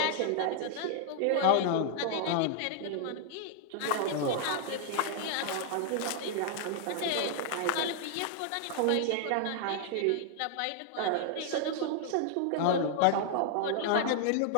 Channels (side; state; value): both; different; correlation 0.00